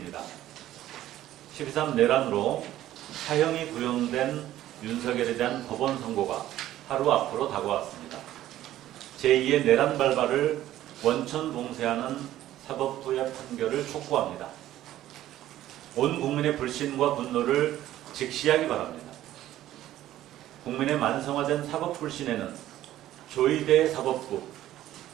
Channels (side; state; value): left; quieter; 13.5 dB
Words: 12.3 내란으로 사형이 구형된 윤석열에 대한 법원 선고가 하루 앞으로 다가왔습니다. 제2의 내란 발발을 원천 봉쇄하는 사법부의 판결을 촉구합니다. 온 국민의 불신과 분노를 직시하기 바랍니다. 국민의 만성화된 사법 불신에는 조의대 사법부,